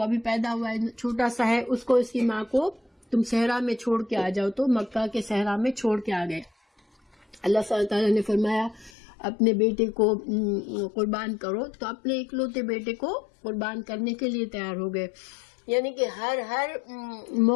ابھی پیدا ہوا ہے، چھوٹا سا ہے، اس کو اس کی ماں کو تم صحرا میں چھوڑ کے آ جاؤ، تو مکہ کے صحرا میں چھوڑ کے آ گئے. اللہ تعالیٰ نے فرمایا اپنے بیٹے کو قربان کرو، تو اپنے اکلوتے بیٹے کو قربان کرنے کے لیے تیار ہو گئے. یعنی کہ ہر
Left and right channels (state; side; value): drops out; right; at 8.9 s